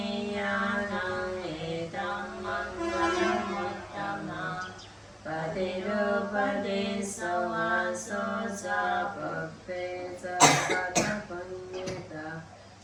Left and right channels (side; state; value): both; identical; correlation 1.00